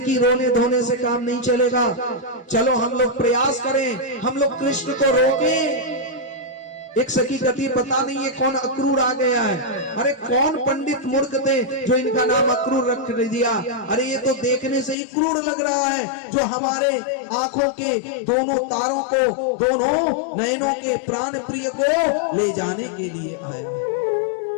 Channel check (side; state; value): right; drops out; at 15.0 s